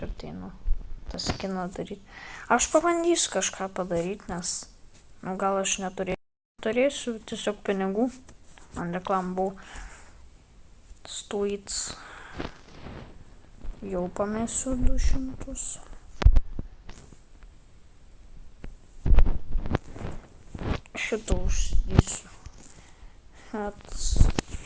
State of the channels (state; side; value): identical; both; correlation 1.00